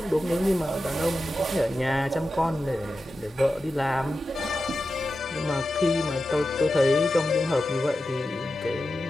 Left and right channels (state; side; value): normal; both; correlation 0.92